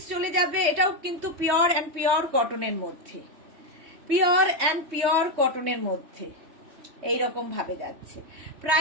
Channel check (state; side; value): late; left; 3.2 ms